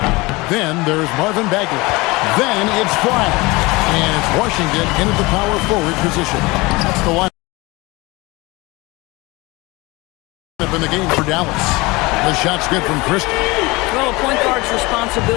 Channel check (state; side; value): quieter; right; 23.3 dB